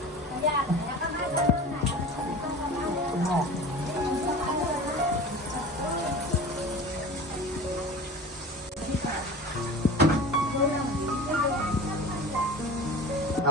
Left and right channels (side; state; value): both; normal; correlation 0.37